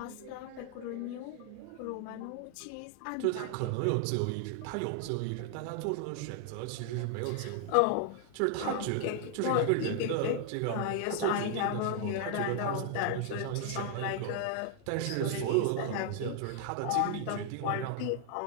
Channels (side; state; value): both; different; correlation 0.00